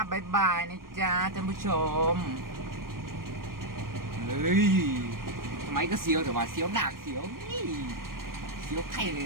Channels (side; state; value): left; late; 0.91 ms